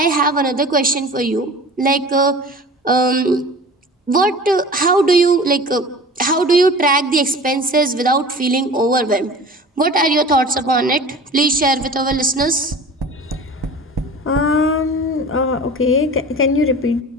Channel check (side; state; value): both; normal; correlation 0.39